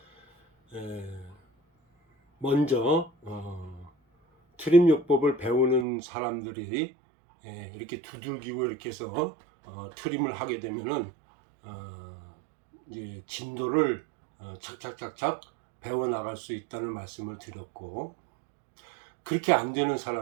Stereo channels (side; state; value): left; drops out; at 5.9 s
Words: 먼저 트림요법을 배우는 사람들이 이렇게 두들기고 이렇게 해서 트림을 하게 되면은 이제 진도를 착착착착 배워 나갈 수 있다는 말씀을 드렸고, 그렇게 안 되는